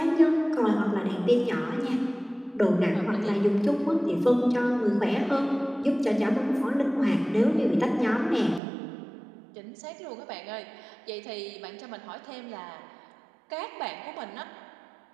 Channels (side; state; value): left; drops out; at 8.6 s